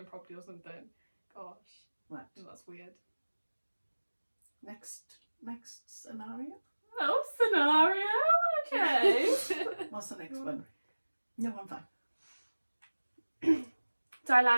probably or something. Gosh, Right. that's weird. Next scenario. Oh, scenario. Okay. What's the next one? No, I'm fine.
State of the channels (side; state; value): both; inverted; correlation -1.00